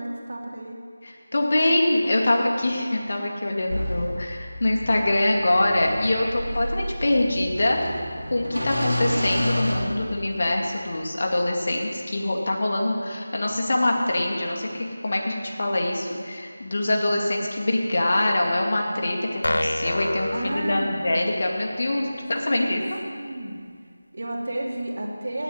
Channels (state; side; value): inverted; both; correlation -0.97